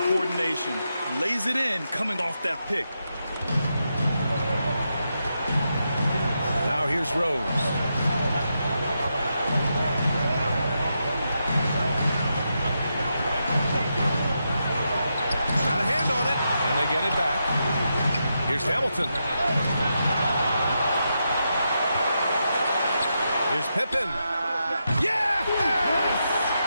coordination. Lays it in coming off that pick. Now here's Rose. Got a hand on it. And they get it back. Here's Hamilton. Here's Pippen. Yes!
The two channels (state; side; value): inverted; both; correlation -0.85